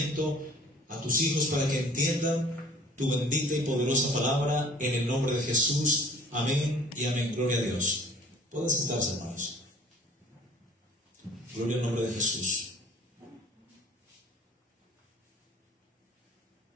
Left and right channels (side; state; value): both; normal; correlation 0.52